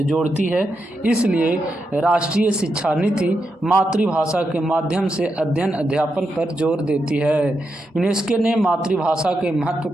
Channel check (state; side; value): normal; both; correlation 0.85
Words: जोड़ती है। इसलिए राष्ट्रीय शिक्षा नीति मातृभाषा के माध्यम से अध्ययन अध्यापन पर जोर देती है। यूनेस्को ने मातृभाषा के महत्व